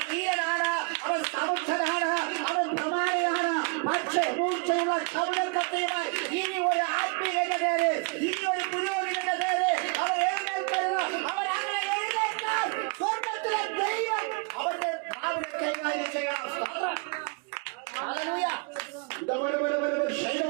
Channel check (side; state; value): left; quieter; 32.1 dB